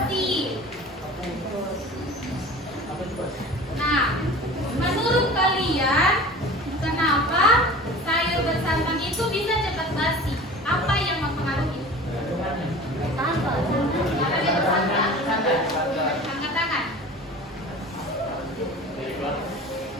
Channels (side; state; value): both; normal; correlation 0.39